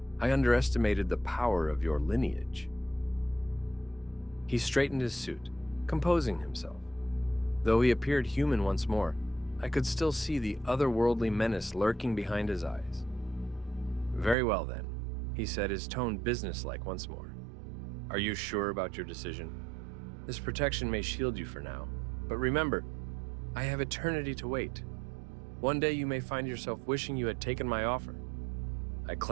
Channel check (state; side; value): drops out; left; at 14.4 s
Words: I underestimated the power of your lineage." He straightened his suit, composing himself. Though he appeared human once more, I could still see the otherworldly menace lurking behind his eyes. "Very well, then," he said, his tone businesslike once more. "Are you sure about your decision? This protection may shield you for now, but remember, I have eternity to wait. One day you may find yourself wishing you had taken my offer." I